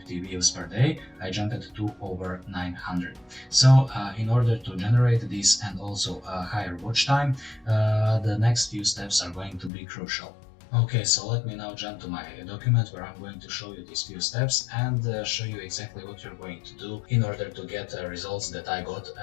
views per day, I jumped to over 900. So in order to generate this and also a higher watch time, the next few steps are going to be crucial. Okay, so let me now jump to my document where I'm going to show you these few steps and show you exactly what you're going to do in order to get results that I got,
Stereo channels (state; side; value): drops out; right; at 9.7 s